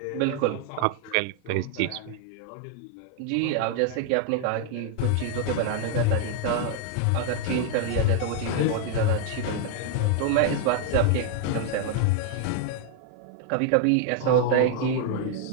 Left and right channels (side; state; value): both; different; correlation 0.00